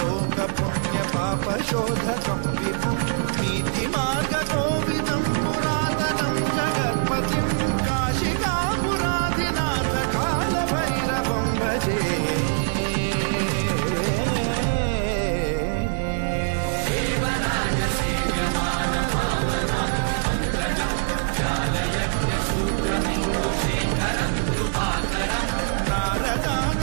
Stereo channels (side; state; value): left; silent; digital silence